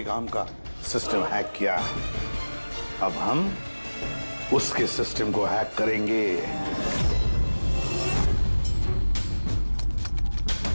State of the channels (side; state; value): both; inverted; correlation -1.00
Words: आर्म का सिस्टम हैक किया, अब हम उसके सिस्टम को हैक करेंगे।